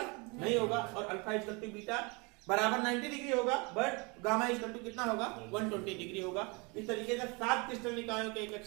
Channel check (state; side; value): quieter; left; 29.1 dB